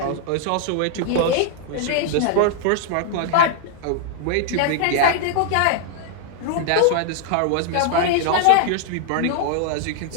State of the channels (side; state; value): both; different; correlation 0.00